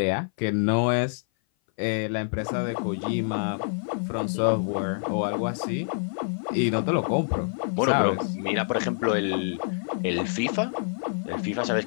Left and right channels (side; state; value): right; silent; 57 dB below the other